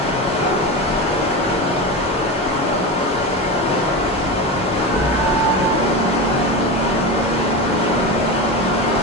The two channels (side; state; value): both; normal; correlation 0.22